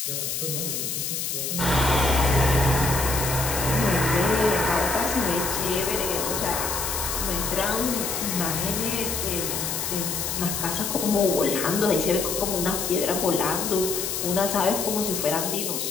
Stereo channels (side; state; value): left; noise; hiss, 2 dB below the sound